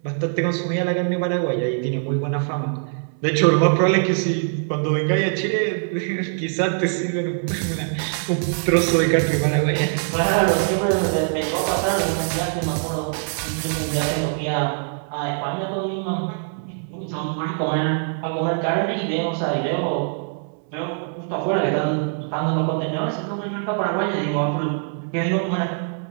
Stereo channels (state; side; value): silent; left; 64 dB below the other